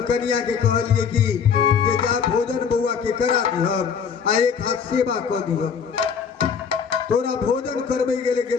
कन्या के कहलिए कि जे जा भोजन बउआ के करा दिहब आ एक हाथ सेवा क दिहब। तोरा भोजन करबे गेले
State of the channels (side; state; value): right; quieter; 6.7 dB